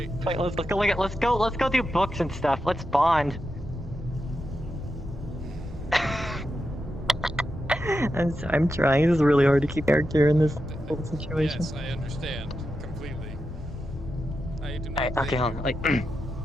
Wait, let's go do books and stuff. Let's bond. I'm trying. This is really hard to keep character in this whole situation. Yes, I understand completely. I do not. Okay, hold on. Like, wait.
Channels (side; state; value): both; normal; correlation 0.88